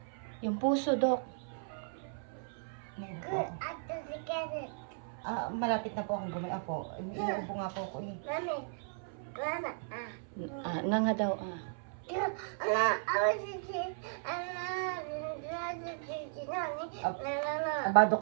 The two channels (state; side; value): silent; left; 54 dB below the other